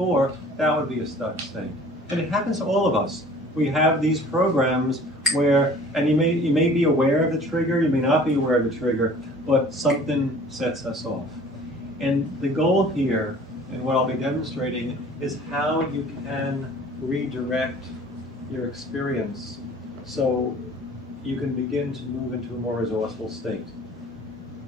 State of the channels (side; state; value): both; normal; correlation 0.49